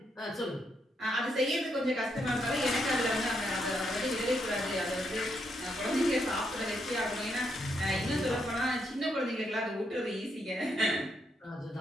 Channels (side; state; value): both; normal; correlation 0.78